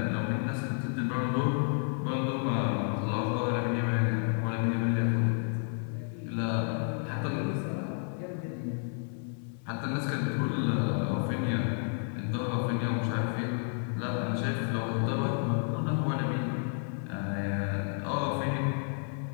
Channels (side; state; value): right; silent; 57 dB below the other